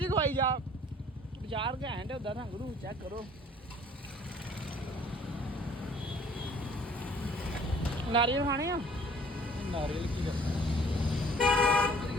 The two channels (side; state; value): both; normal; correlation 0.54